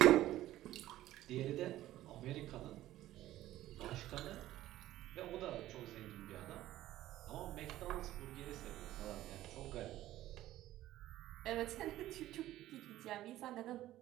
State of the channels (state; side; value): quieter; left; 14.6 dB